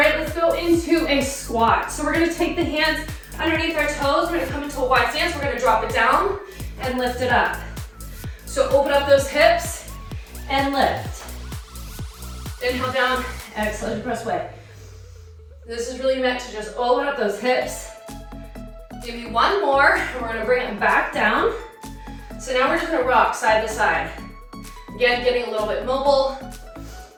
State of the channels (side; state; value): both; identical; correlation 1.00